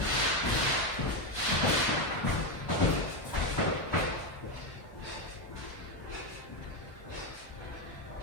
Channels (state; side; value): late; right; 1.3 ms